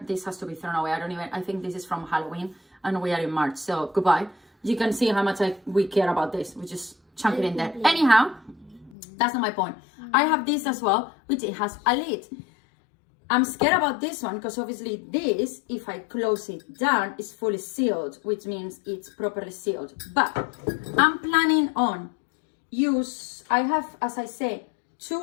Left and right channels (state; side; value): drops out; right; at 9.0 s